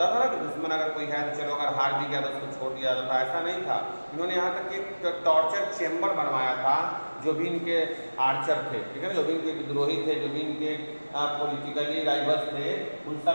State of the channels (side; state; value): both; inverted; correlation -1.00